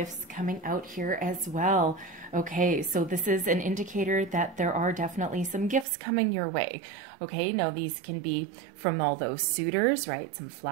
coming out here as well. Okay, so this is an indicator that there are definitely some gifts coming your way. Okay, now these can be from all those suitors, right? Some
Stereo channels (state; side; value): drops out; left; at 5.9 s